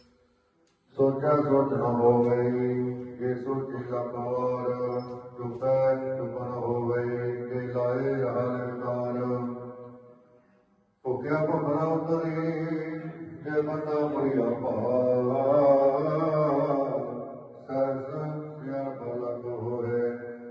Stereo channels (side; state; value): both; identical; correlation 1.00